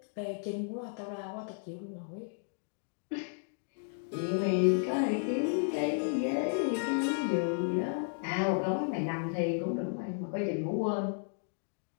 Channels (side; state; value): right; silent; digital silence